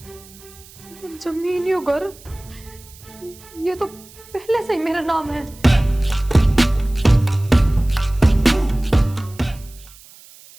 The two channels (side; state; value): right; noise; hiss, 22 dB below the sound